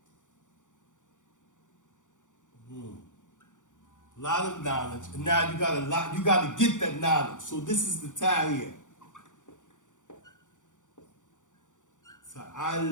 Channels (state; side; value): late; right; 0.86 ms